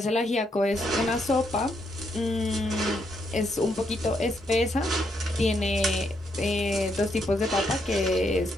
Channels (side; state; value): both; normal; correlation 0.77